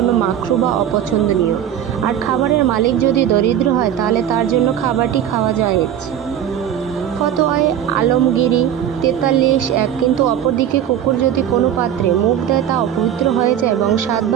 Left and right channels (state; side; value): quieter; left; 10.1 dB